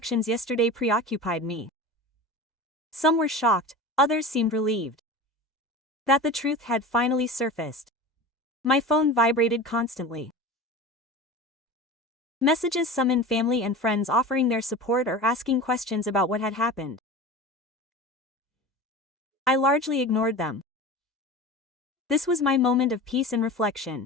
yesterday preoccupied me. Some were shocked, others seemed relieved that the truth had finally surfaced. My phone vibrated constantly. Messages summoned family and friends offering their support or asking questions about what had happened. I largely ignored them. This was my moment of peace and reflection.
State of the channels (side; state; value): both; normal; correlation 0.32